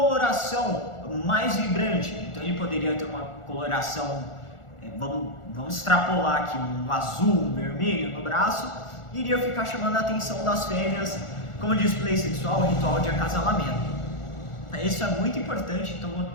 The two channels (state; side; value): late; right; 1.4 ms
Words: mais vibrante. Então ele poderia ter uma coloração, vamos extrapolar aqui, um azul, um vermelho no braço, e iria ficar chamando a atenção das fêmeas como display sexual, ritual de acasalamento. Isso é muito importante, então vou